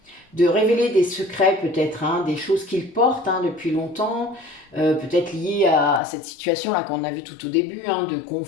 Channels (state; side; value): drops out; right; at 6.0 s